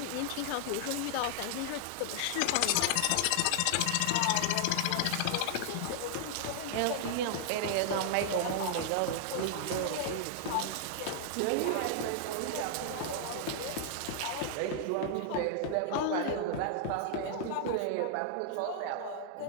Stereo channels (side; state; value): both; different; correlation -0.01